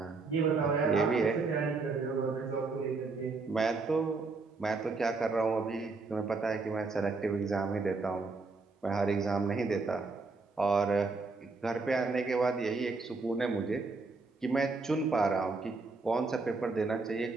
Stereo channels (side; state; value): left; quieter; 4.0 dB